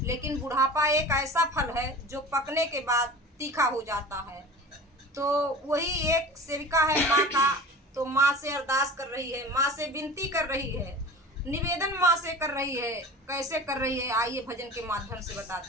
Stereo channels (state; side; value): normal; both; correlation 0.37